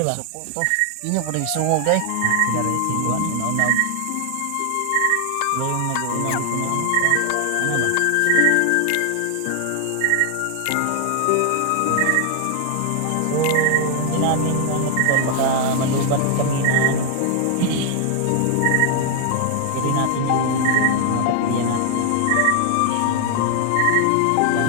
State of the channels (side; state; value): both; different; correlation 0.00